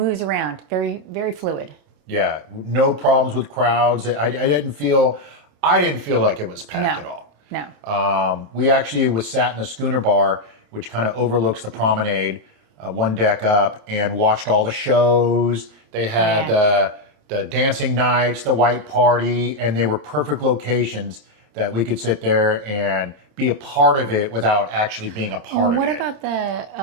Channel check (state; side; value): late; left; 27 ms